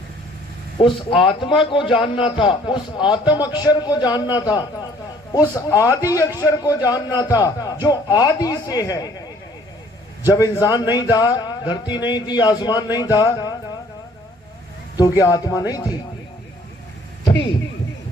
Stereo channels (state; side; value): normal; both; correlation 0.58